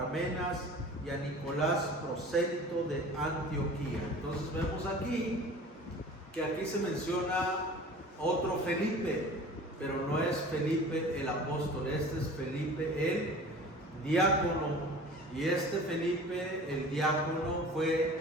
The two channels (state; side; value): normal; both; correlation 0.42